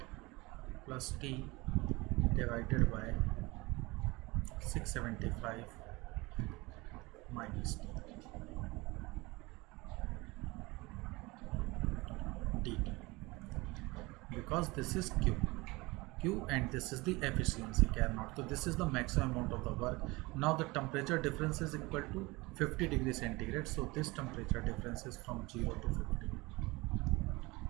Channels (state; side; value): quieter; left; 23.1 dB